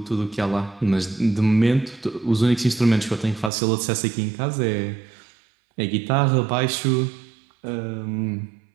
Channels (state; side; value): drops out; left; at 3.5 s